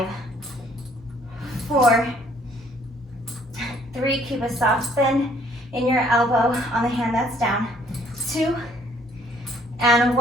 4, 3, keep a soft bend in your elbow on the hand that's down, 2, and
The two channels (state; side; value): normal; both; correlation 0.61